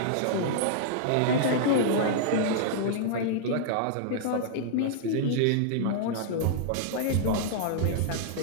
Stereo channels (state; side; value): different; both; correlation -0.01